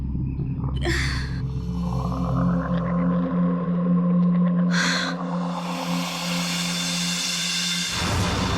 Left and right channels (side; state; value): both; identical; correlation 1.00